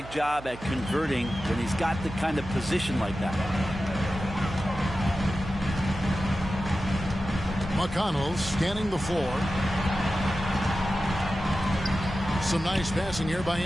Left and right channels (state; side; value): noise; right; hum, 15 dB below the sound